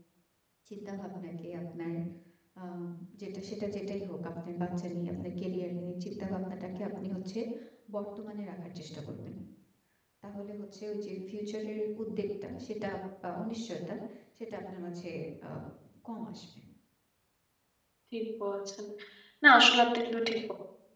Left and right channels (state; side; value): identical; both; correlation 1.00